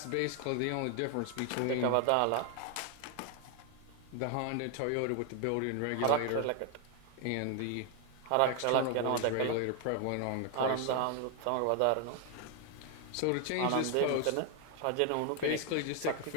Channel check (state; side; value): different; both; correlation 0.00